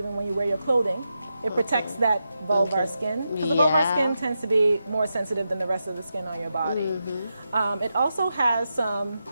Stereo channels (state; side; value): inverted; both; correlation -0.88